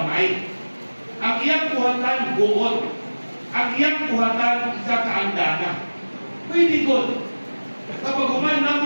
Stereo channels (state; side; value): inverted; both; correlation -1.00